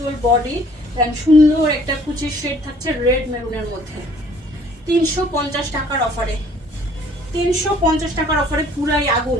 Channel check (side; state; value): both; normal; correlation 0.57